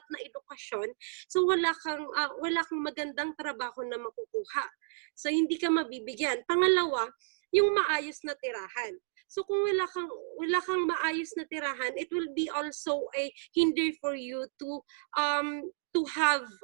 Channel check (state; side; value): silent; left; digital silence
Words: na edukasyon, so wala kang magandang trabaho na makukuha. So hindi ka mabibigyan. Pangalawa, yung maayos na tirahan. So kung wala kang maayos na tirahan, it will be also a hinder for you to have